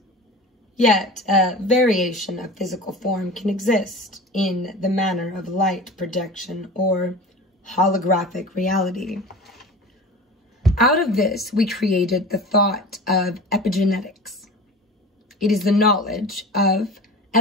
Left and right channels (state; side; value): normal; both; correlation 0.35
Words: Yet, a variation of physical form can exist in the manner of light projection or holographic reality. Out of this, we created the thought of epigenetics. It is the knowledge of